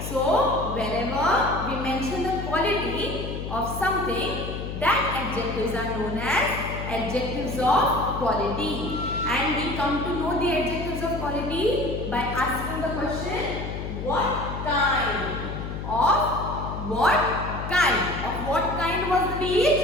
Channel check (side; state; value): left; noise; hum, 6 dB below the sound